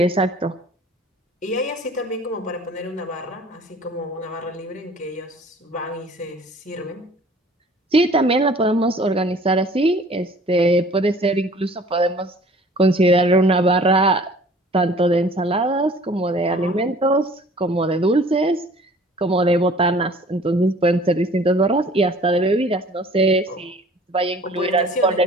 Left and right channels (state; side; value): normal; both; correlation 0.51